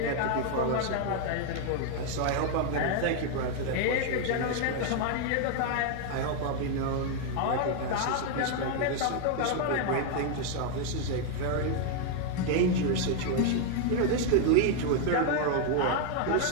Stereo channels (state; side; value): different; both; correlation 0.00